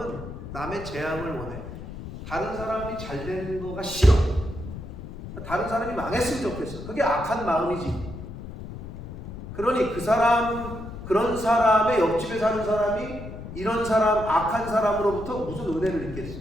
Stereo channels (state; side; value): noise; left; rumble, 11 dB below the sound